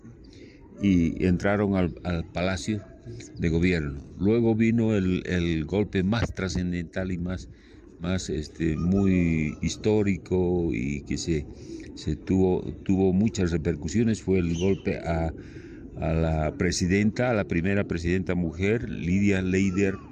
y entraron al Palacio de Gobierno. Luego vino el golpe más trascendental y más muy histórico, y que tuvo muchas repercusiones. Fue el golpe a la primera presidenta mujer, Lidia Leider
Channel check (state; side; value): identical; both; correlation 1.00